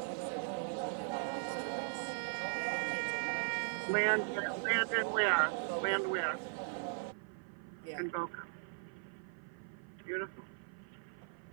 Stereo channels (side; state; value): left; silent; 52 dB below the other